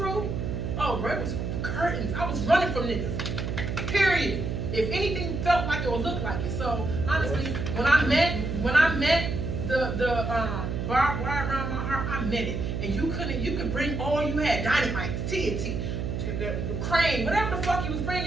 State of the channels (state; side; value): noise; right; hum, 3 dB below the sound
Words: oh, bro, it was curtains. I was running from niggas. Period. If anything felt like it or looked like it. So honestly, when I met the barbed wire around my heart, I meant it. And you could bring all you had, dynamite, TNT, the crane, whatever the fuck you was